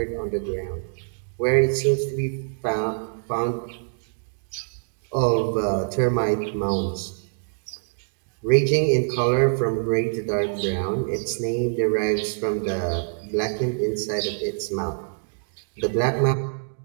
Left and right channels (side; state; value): left; silent; digital silence